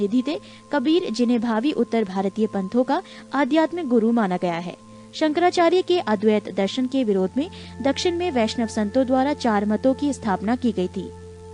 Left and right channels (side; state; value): both; identical; correlation 1.00